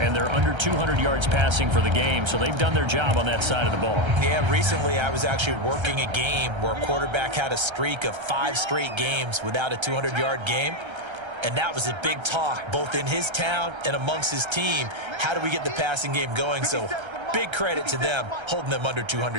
they're under 200 yards passing for the game, so they've done their job on that side of the ball. Yeah, recently I was actually working a game where a quarterback had a streak of 5 straight games without a 200-yard game, and that was a big talk both in his town and amongst his team. How do we get the passing game going? So big credit to them holding them under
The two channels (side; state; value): left; late; 1.3 ms